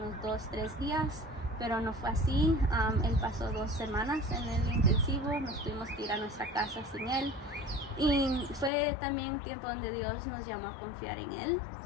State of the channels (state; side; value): drops out; right; at 8.7 s